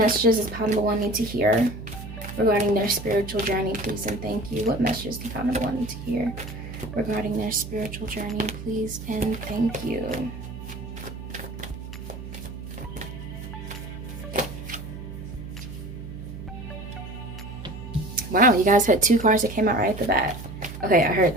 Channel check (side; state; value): right; noise; hum, 11 dB below the sound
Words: does pile number 1 need to hear regarding their spiritual journey, please and thank you? What messages do pile number 1 need to hear regarding their spiritual journey, please and thank you? Wow, you guys had 2 cards that came out right at the bat. Okay, I heard